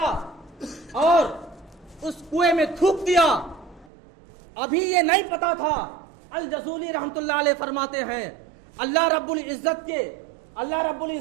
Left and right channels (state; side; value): drops out; left; at 3.9 s